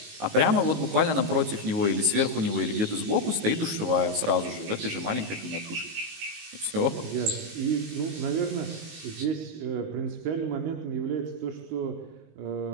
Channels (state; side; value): late; left; 18 ms